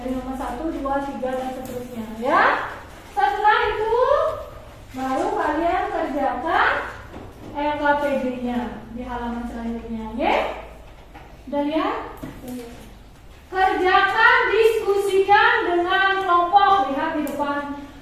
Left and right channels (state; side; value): identical; both; correlation 1.00